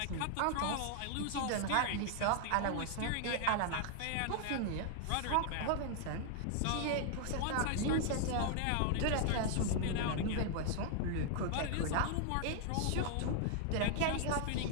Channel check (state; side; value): different; both; correlation 0.00